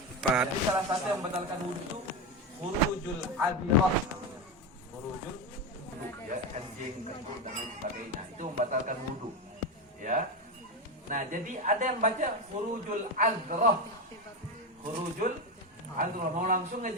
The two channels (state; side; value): normal; both; correlation 0.15